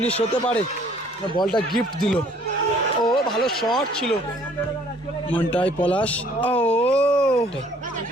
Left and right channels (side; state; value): both; normal; correlation 0.59